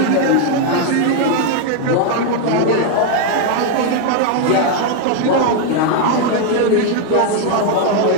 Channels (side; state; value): both; different; correlation 0.01